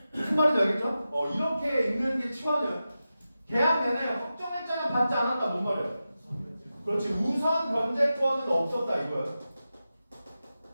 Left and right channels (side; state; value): both; inverted; correlation -0.92